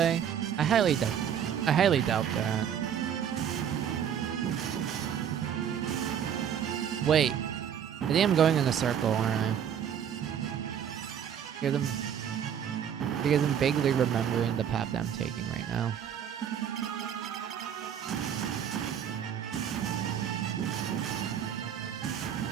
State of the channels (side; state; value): left; quieter; 8.8 dB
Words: I highly doubt that. Wait. I think I'm going in a circle, aren't I? Because I'm vaguely remembering the path that I'm taking right now.